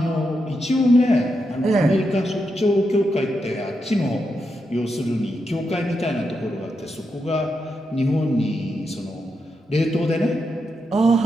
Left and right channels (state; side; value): normal; both; correlation 0.85